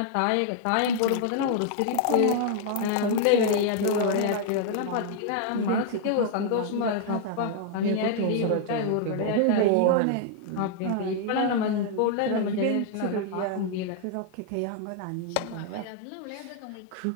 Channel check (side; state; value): both; different; correlation 0.00